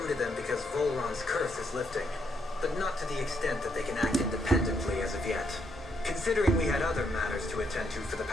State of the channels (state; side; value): normal; both; correlation 0.75